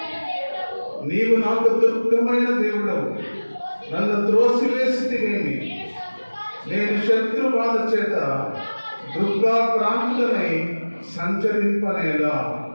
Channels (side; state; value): both; inverted; correlation -1.00